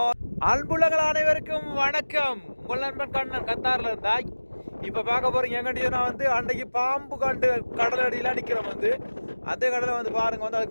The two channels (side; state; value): both; inverted; correlation -1.00